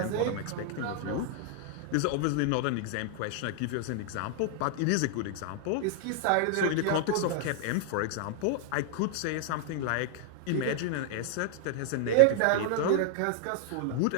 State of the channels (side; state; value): both; different; correlation 0.00